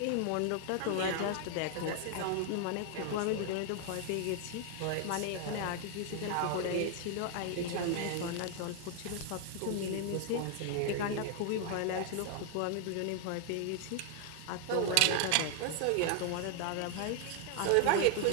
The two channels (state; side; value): different; both; correlation 0.00